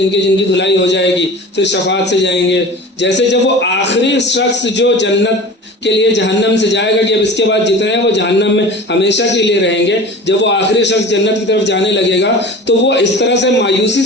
کی دھلائی ہو جائے گی, پھر شفاعت سے جائیں گے. جیسے جب وہ آخری شخص جو جنت کے لیے جہنم سے جائے گا کہ اب اس کے بعد جتنے ہیں وہ جہنم میں ہمیشہ کے لیے رہیں گے, جب وہ آخری شخص جنت کی طرف جانے لگے گا تو وہ اس طرح سے مایوسی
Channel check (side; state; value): both; normal; correlation 0.37